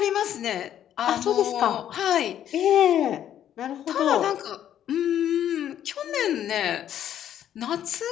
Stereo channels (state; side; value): quieter; right; 10.6 dB